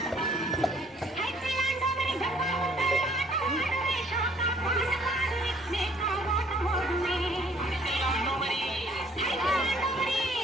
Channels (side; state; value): both; normal; correlation 0.61